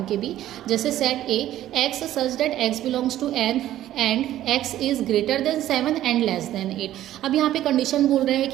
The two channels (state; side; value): quieter; left; 13.1 dB